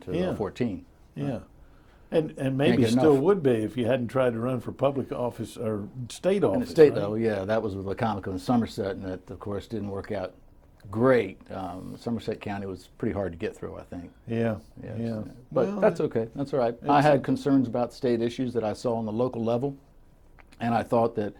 14. Yeah. And maybe still would be if you hadn't tried to run for public office or state office. In the state right? level, yeah, that was with Wicomico and Somerset, and that, of course, didn't work out great. Somerset County was pretty hard to get through, I think. Yeah. Yes. Yeah. But Well, that's okay. That's all right. I had concerns about state issues that I saw on the local level, and I thought that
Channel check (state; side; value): identical; both; correlation 1.00